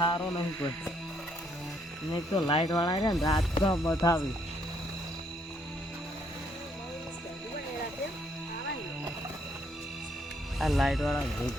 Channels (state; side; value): normal; both; correlation 0.70